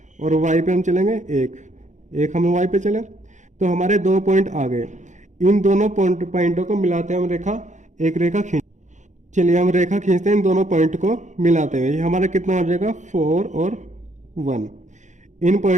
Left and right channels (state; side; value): late; left; 0.35 ms